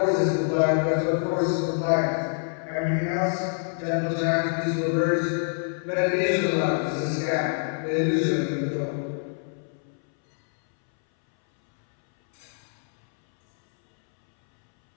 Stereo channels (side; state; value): right; silent; 61 dB below the other